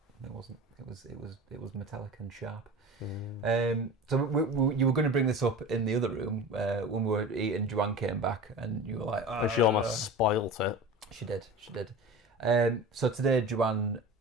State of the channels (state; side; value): normal; both; correlation 0.34